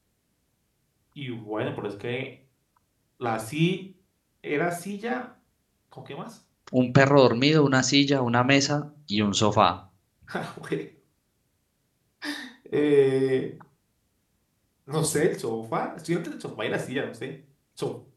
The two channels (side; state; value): both; identical; correlation 1.00